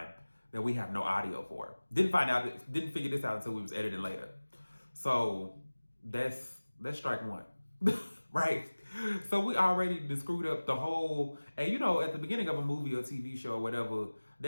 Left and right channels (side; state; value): both; inverted; correlation -1.00